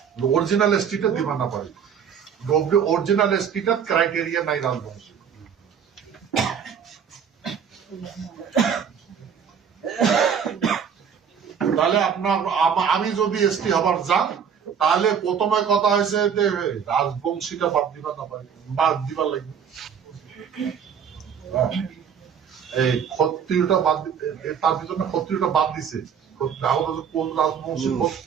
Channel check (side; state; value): left; quieter; 7.4 dB